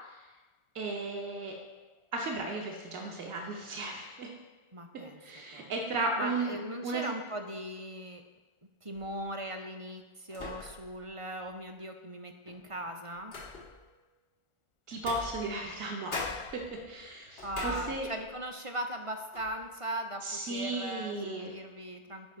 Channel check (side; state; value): left; late; 1.4 ms